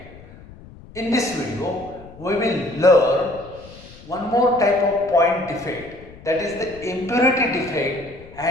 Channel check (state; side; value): noise; left; rumble, 20 dB below the sound